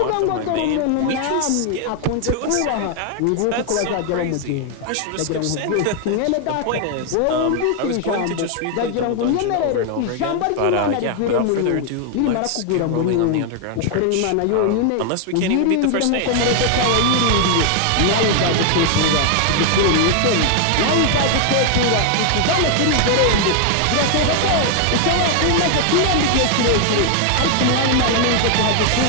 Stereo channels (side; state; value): both; different; correlation 0.00